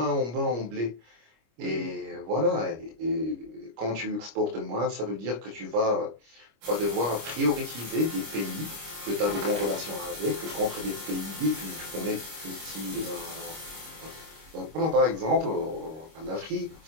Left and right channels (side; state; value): left; late; 25 ms